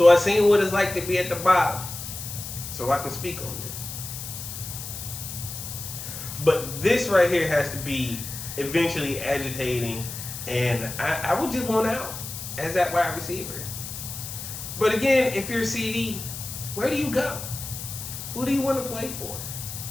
I seen what it's like to be at the bottom, so I can speak on this. But this right here has to be eventually agitating, and I would just want out as that wide receiver. But again, if you're CD, where do you go? Who do you want to play for?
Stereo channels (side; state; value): left; noise; hiss, 9 dB below the sound